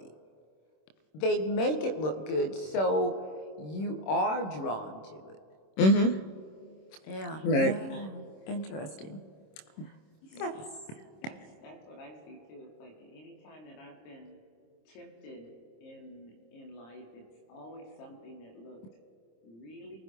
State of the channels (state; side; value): late; right; 26 ms